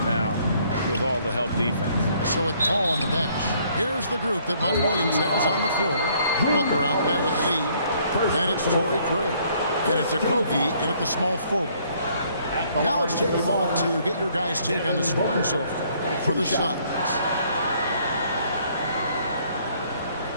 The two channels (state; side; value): inverted; both; correlation -0.64